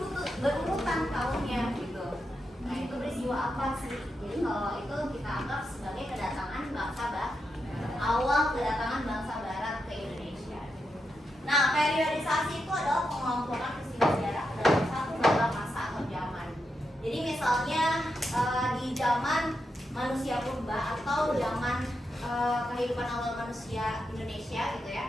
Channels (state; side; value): normal; both; correlation 0.85